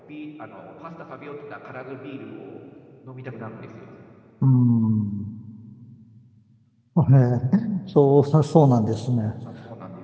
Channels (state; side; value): identical; both; correlation 1.00